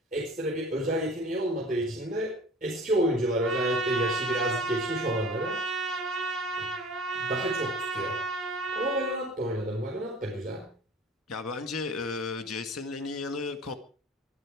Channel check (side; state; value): both; normal; correlation 0.43